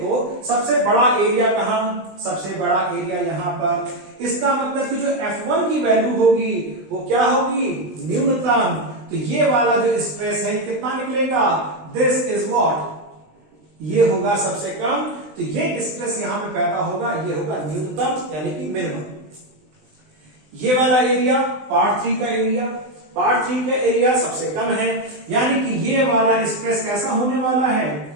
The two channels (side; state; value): left; late; 20 ms